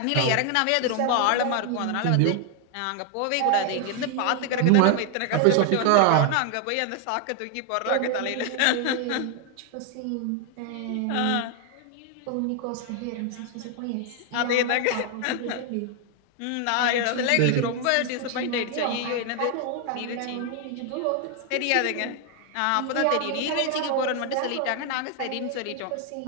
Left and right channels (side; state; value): both; different; correlation 0.00